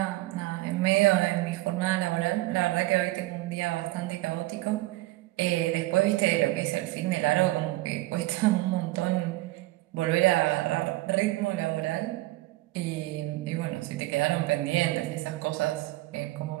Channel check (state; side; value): quieter; left; 18.7 dB